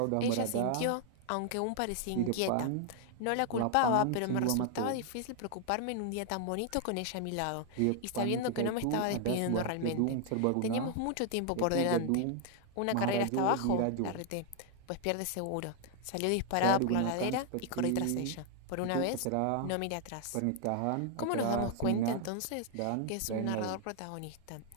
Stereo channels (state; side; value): different; both; correlation 0.00